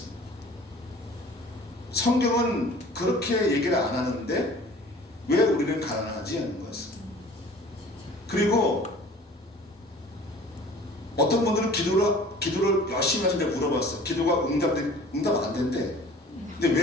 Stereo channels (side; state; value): both; normal; correlation 0.47